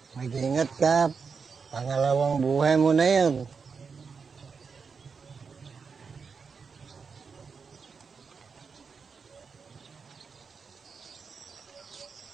Ingat ka. Pangalawang buhay mo na yan.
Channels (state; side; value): quieter; left; 5.5 dB